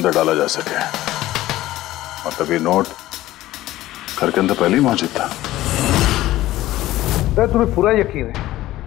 डाला जा सके। मतलब ये नोट घर के अंदर पहले ही मौजूद था। सर तुम्हें पूरा यकीन है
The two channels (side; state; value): right; quieter; 15.7 dB